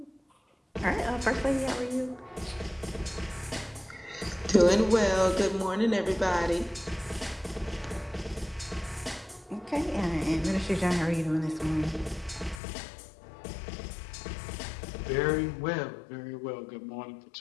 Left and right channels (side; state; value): right; drops out; at 12.6 s